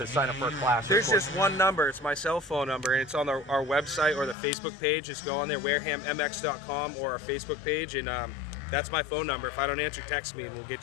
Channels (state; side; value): drops out; right; at 4.4 s